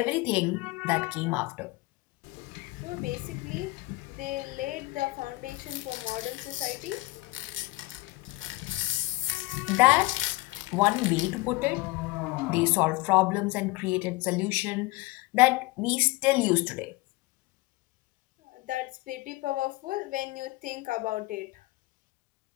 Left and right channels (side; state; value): right; quieter; 21.6 dB